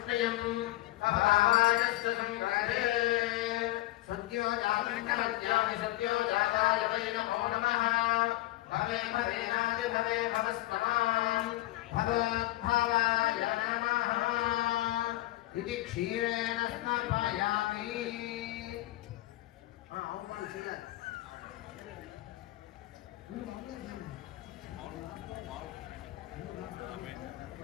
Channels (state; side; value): quieter; right; 17.6 dB